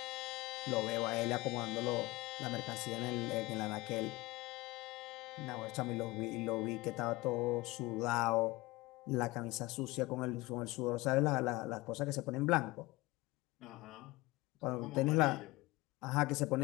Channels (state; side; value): quieter; right; 21.1 dB